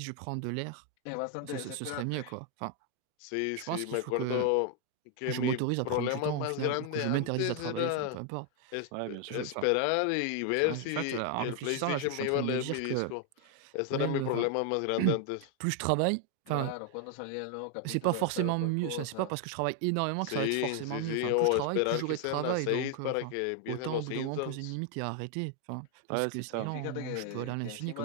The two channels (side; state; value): both; different; correlation 0.00